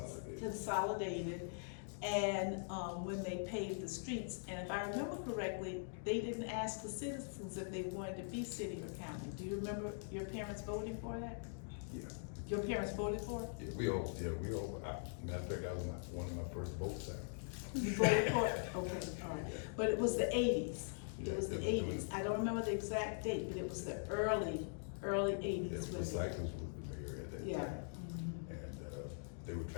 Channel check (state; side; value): silent; right; digital silence